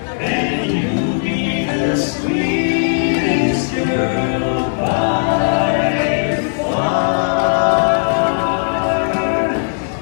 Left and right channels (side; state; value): right; silent; digital silence